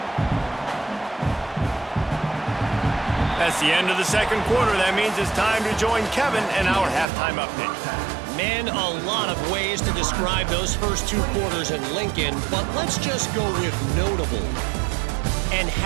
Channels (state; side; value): drops out; left; at 7.1 s